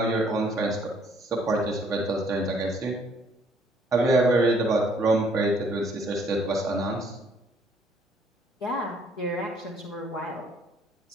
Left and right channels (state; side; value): normal; both; correlation 0.64